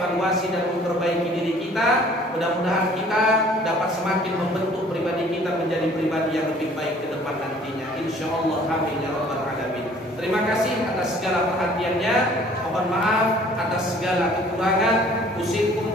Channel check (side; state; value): both; normal; correlation 0.54